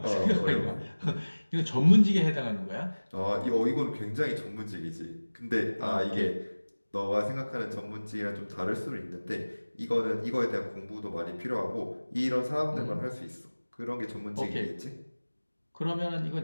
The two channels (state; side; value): inverted; both; correlation -1.00